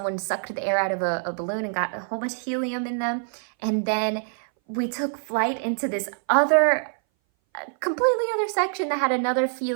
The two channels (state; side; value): silent; left; 59 dB below the other